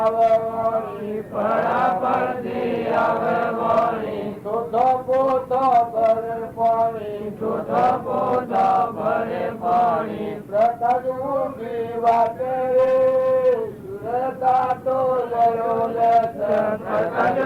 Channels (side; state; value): both; identical; correlation 1.00